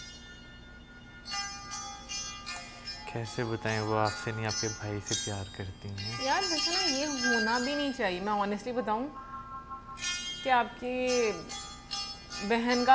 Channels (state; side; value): identical; both; correlation 1.00